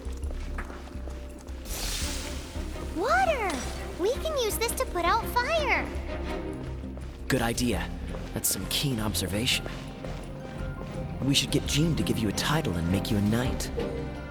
Water! We can use this to put out fire. Good idea. That's some keen observation. We should get Jean to give you a title and make you a knight.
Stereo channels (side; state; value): both; identical; correlation 1.00